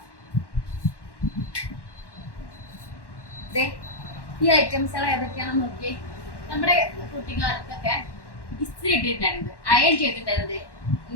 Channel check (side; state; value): right; late; 1.1 ms